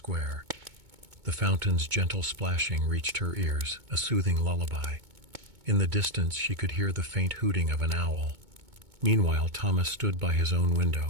The fountain's gentle splashing reached her ears, a soothing lullaby. In the distance she could hear the faint hooting of an owl. Meanwhile, Thomas stood by his own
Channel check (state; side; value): late; left; 2.2 ms